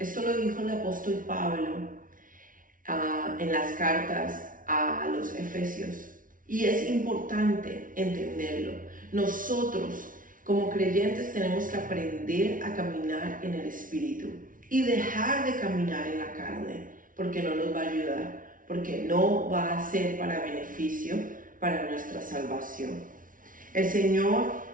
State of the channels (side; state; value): left; late; 0.39 ms